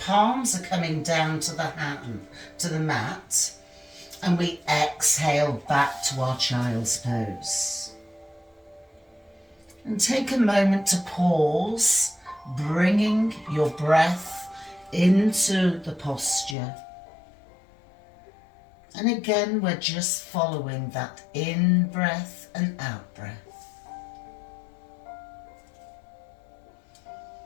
palms are coming down to the hand, to the mat, and we exhale back to our child's pose. And take a moment to pause, bringing your breath into the posture. And again, we're just following that in breath and out breath.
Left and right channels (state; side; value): drops out; right; at 16.6 s